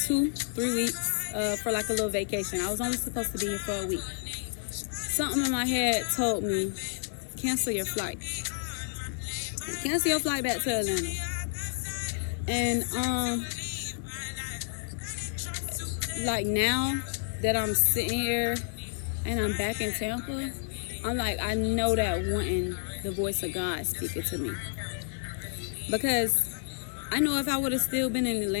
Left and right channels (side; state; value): right; silent; 58 dB below the other